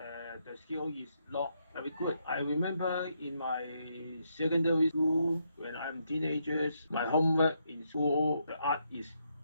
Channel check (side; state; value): both; inverted; correlation -0.78